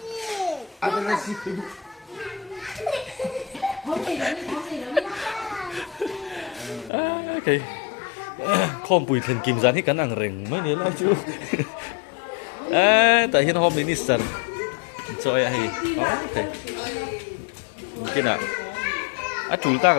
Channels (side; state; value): right; drops out; at 6.9 s